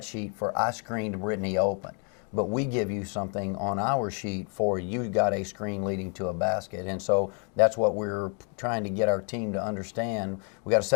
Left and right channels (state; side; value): quieter; right; 39.6 dB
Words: sheet for I screened Brittany open, but we give you something on our sheet for you got a screen leading to a basket. And so that's what we're trying to get our team to understand. We got to